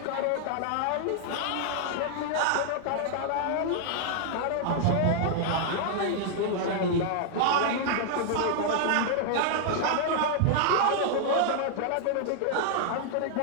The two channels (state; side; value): different; both; correlation -0.01